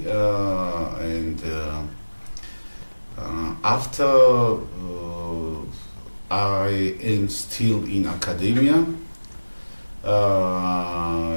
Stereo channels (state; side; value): inverted; both; correlation -1.00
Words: and after I am still in academia